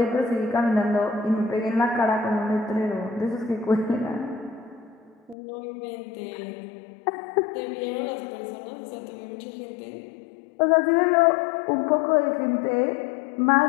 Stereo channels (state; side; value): drops out; right; at 5.4 s